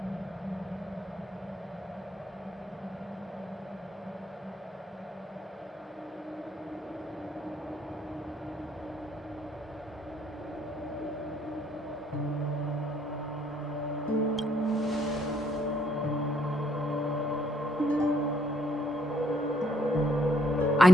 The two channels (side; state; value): both; normal; correlation 0.69